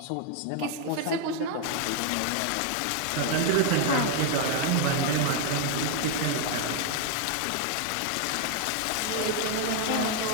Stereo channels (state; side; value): different; both; correlation 0.00